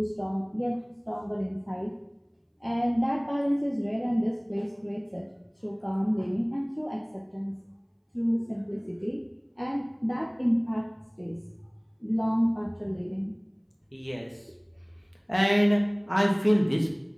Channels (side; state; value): both; identical; correlation 1.00